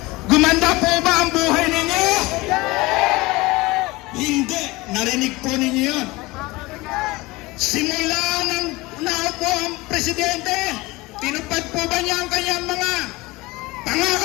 gumanda po ba ang buhay ninyo? Hindi. Narinig po ninyo yun. Simula nang naupo ang presidente, tinupad po ba niya ang kanyang mga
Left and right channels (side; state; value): right; quieter; 21.7 dB